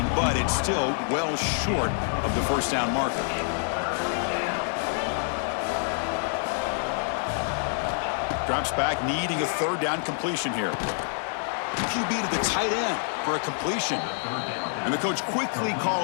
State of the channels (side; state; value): right; silent; 60 dB below the other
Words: but it's still well short of the first down marker. Drops back, needing a third down completion here. QB to the tight end for a completion. And the coach quickly